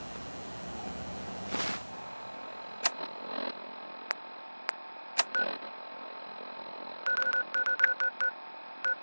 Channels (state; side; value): inverted; both; correlation -1.00